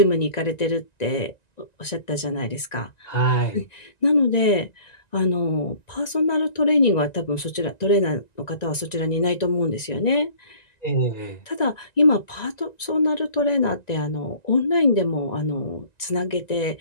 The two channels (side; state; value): right; late; 1.9 ms